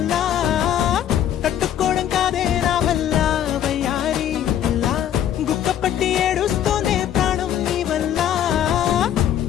తట్టుకోవడం కాదే నా వల్ల వయ్యారి పిల్ల గుక్క పట్టి ఏడుస్తూనే ప్రాణం నీ వల్ల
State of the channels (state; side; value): quieter; right; 10.5 dB